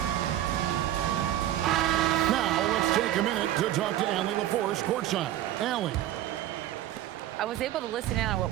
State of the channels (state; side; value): quieter; left; 12.8 dB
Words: Now let's take a minute to talk to Allie LaForce courtside. Allie. I was able to listen in on what